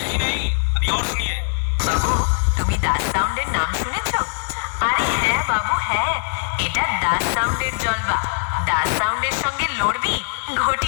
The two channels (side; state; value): right; silent; digital silence